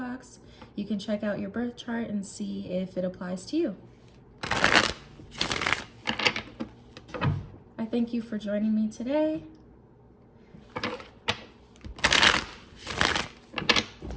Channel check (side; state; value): both; identical; correlation 1.00